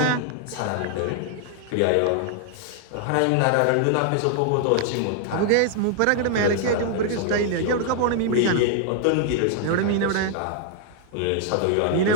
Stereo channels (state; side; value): different; both; correlation 0.00